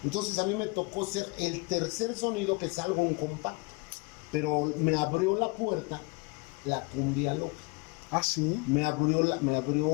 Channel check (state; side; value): quieter; right; 27.9 dB